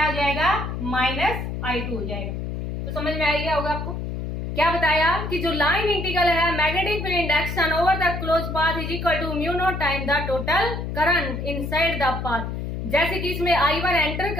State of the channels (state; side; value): noise; left; hum, 5 dB below the sound